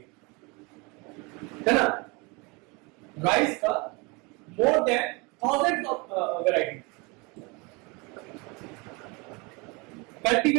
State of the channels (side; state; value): left; quieter; 28.0 dB